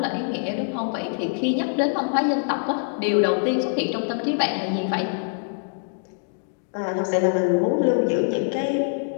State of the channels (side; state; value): right; silent; digital silence